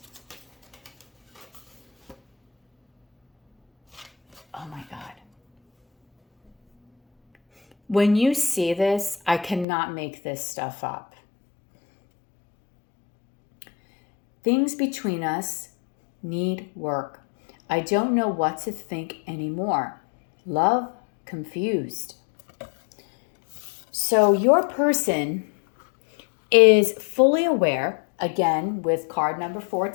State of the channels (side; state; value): right; drops out; at 9.7 s